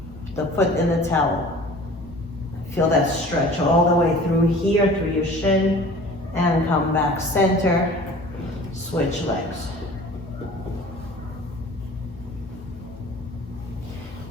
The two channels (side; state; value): both; normal; correlation 0.45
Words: The foot in the towel. Feel that stretch all the way through here, through your shin, and come back center. Switch legs.